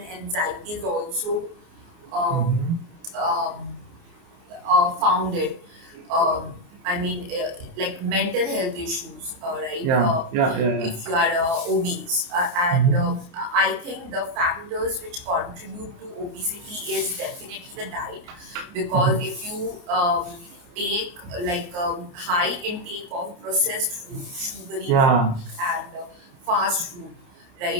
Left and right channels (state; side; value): late; left; 28 ms